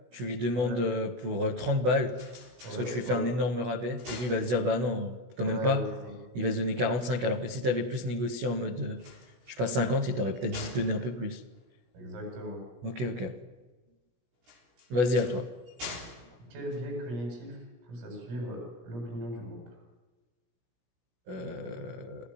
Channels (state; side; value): late; left; 16 ms